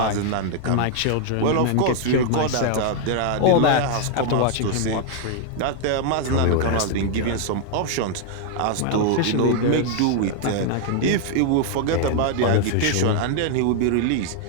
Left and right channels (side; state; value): both; different; correlation 0.00